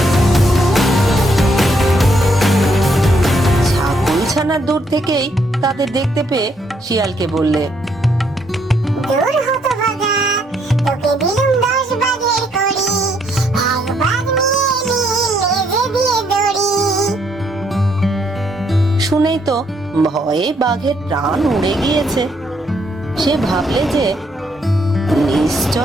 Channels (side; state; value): both; normal; correlation 0.72